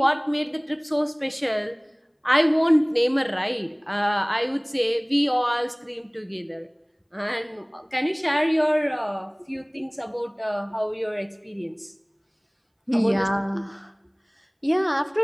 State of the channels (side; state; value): both; identical; correlation 1.00